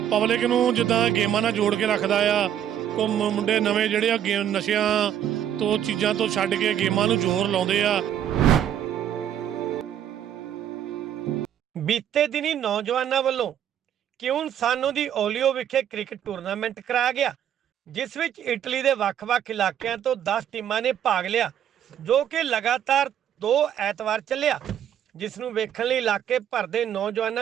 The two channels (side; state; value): left; quieter; 10.0 dB